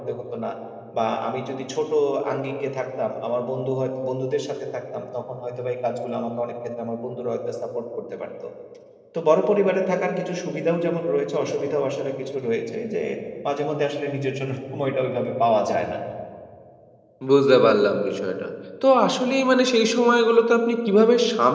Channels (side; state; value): both; identical; correlation 1.00